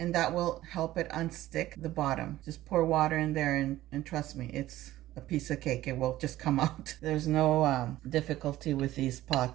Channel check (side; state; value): left; quieter; 15.2 dB